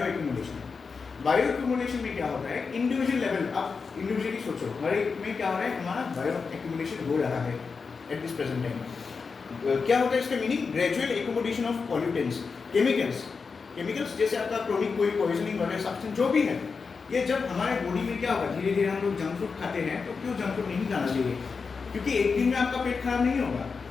बायो एक्यूमुलेशन में क्या होता है इंडिविजुअल लेवल आप इंडिविजुअली सोचो हर एक में क्या हो रहा है हमारा बायो एक्यूमुलेशन हो रहा है एट दिस प्रेजेंट टाइम क्या होता है इसका meaning gradual accumulation of pollutants chemicals जैसे आपका क्रोनिक कोई पॉइजनिंग वगैरह सब्सटेंस जो भी है ये जब हमारे बॉडी में क्या होगा धीरे धीरे हम लोग जंक फूड खाते हैं तो क्यों जंक फूड नहीं खाना चाहिए क्योंकि एक दिन में आपका पेट खराब नहीं होगा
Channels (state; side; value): quieter; right; 5.0 dB